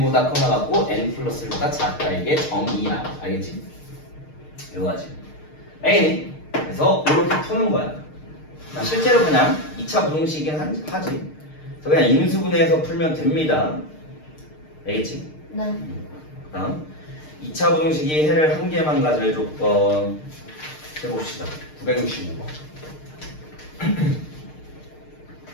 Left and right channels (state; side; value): late; right; 6.5 ms